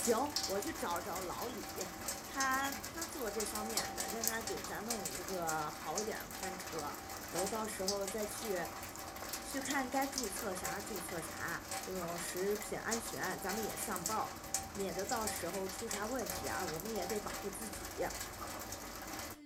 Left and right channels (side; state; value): both; identical; correlation 1.00